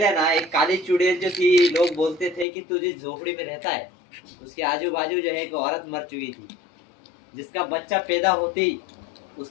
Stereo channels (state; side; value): drops out; right; at 2.5 s